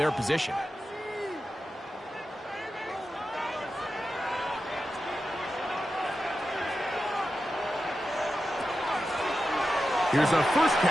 position. Here's a first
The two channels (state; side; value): normal; both; correlation 0.91